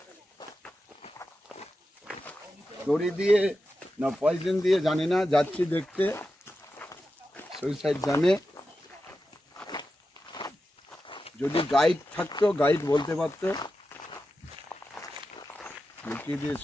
দড়ি দিয়ে না পয়জন দিয়ে জানি না, যাচ্ছি দেখতে সুইসাইড জানে। যদি গাইড থাকতো, গাইড বলতে পারতো কি দিয়ে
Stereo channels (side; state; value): both; normal; correlation 0.91